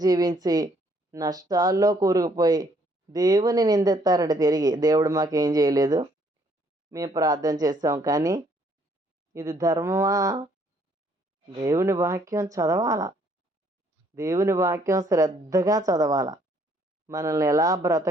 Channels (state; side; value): normal; both; correlation 0.66